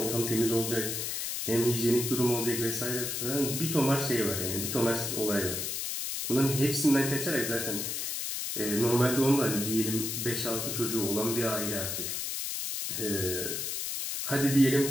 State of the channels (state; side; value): noise; left; hiss, 3 dB below the sound